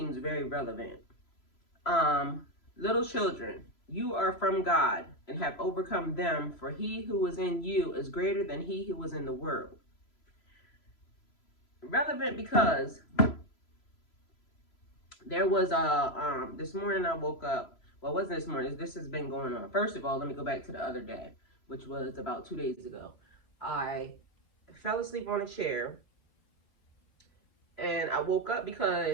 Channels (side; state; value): right; late; 3.0 ms